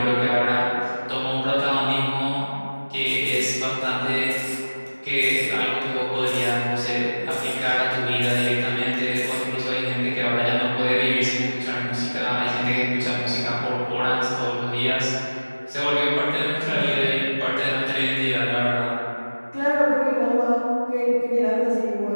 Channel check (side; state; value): both; inverted; correlation -1.00